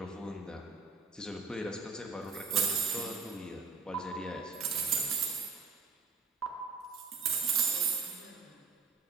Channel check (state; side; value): quieter; left; 4.9 dB